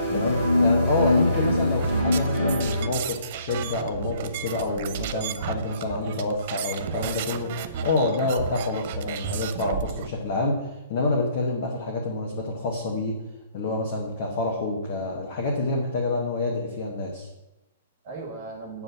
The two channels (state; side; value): inverted; both; correlation -0.59